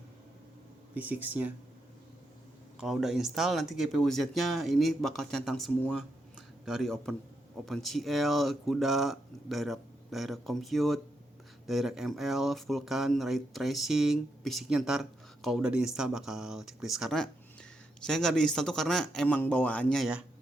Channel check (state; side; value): normal; both; correlation 0.82